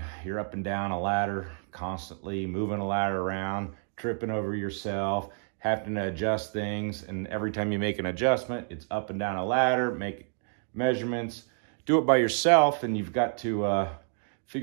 You're up and down a ladder constantly, moving a ladder around, tripping over yourself, having to adjust things. And every time you make an adjustment, it's up and down a ladder, make measurements, do it by yourself. And you've got to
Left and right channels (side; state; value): left; silent; 58 dB below the other